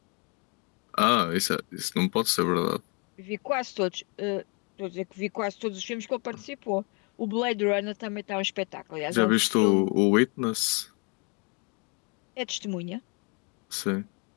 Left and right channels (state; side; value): quieter; right; 33.6 dB